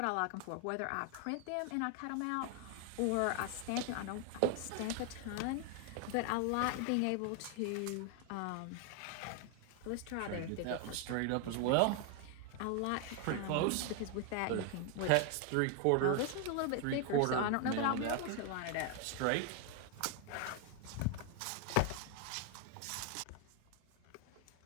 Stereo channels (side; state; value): both; different; correlation 0.00